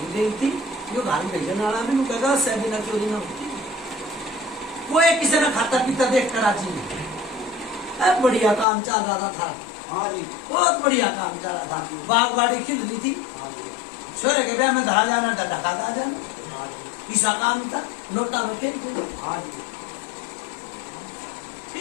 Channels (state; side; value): drops out; right; at 8.7 s